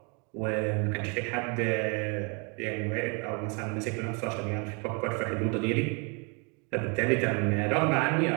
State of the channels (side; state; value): left; quieter; 33.8 dB